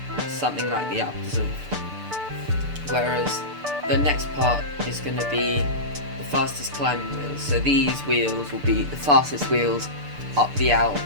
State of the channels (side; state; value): left; late; 6.8 ms